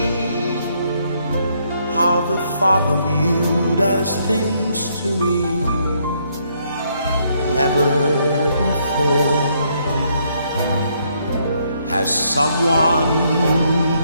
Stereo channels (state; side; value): inverted; both; correlation -0.72